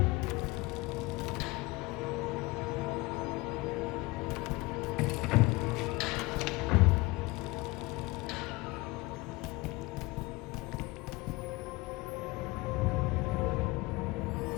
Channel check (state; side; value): quieter; right; 22.6 dB